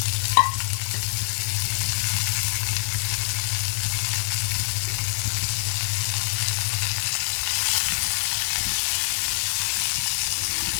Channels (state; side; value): silent; right; digital silence